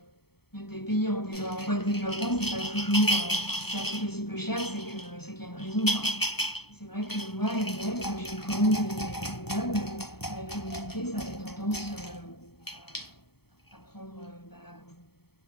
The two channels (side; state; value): right; late; 0.96 ms